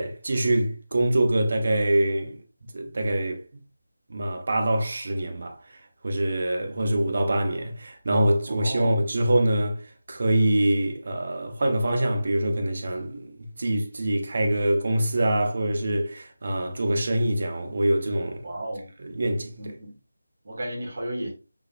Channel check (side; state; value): both; inverted; correlation -0.94